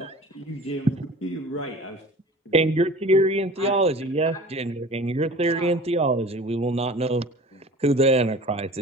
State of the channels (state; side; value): normal; both; correlation 0.42